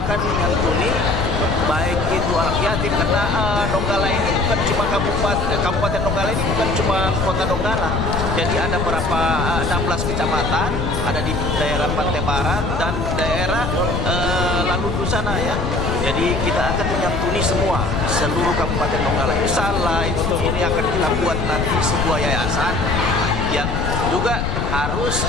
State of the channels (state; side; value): noise; left; rumble, 2 dB below the sound